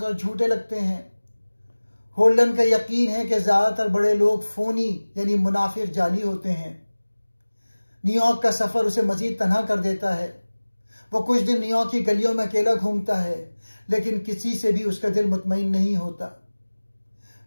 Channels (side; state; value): both; inverted; correlation -1.00